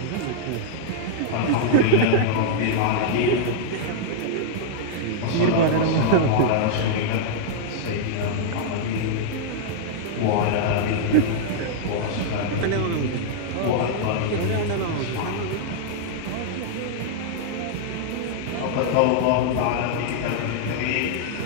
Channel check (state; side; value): different; both; correlation -0.01